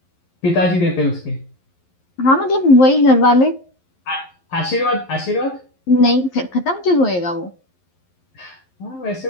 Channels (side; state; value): right; late; 11 ms